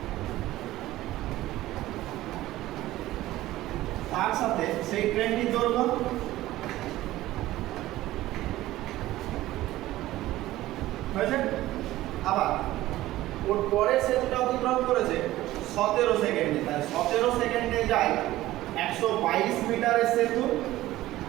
তার সাথে সেই ট্রেনটির দৈর্ঘ্য হয়েছে। আবার ওর পরের সেতুটা অতিক্রম করেছে 17 সেকেন্ডে, তাই 17 সেকেন্ডে যায় 122 মিটারের সেতু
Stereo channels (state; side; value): quieter; left; 16.0 dB